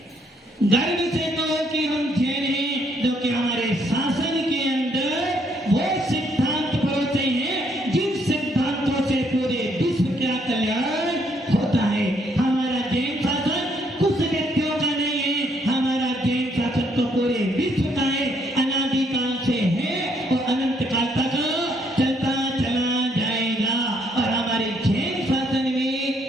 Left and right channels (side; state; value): both; normal; correlation 0.70